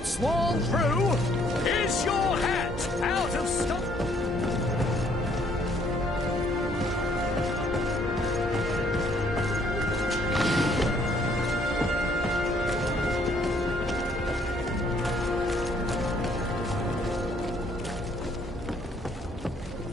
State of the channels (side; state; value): both; normal; correlation 0.65